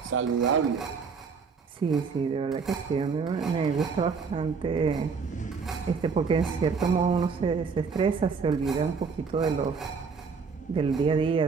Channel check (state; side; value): quieter; left; 5.4 dB